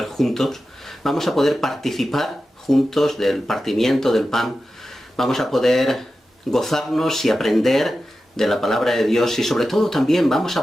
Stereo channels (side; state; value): both; normal; correlation 0.92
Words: juntos. Vamos a poder participar juntos del partimiento del pan. Vamos a poder gozarnos y aprender de la palabra de Dios y sobre todo también vamos